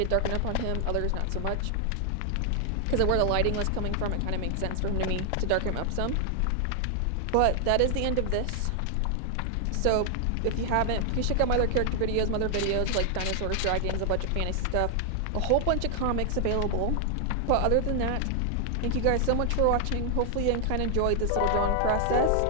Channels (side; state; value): both; different; correlation 0.00